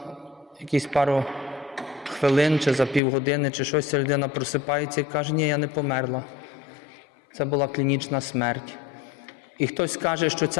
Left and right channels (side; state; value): right; drops out; at 3.0 s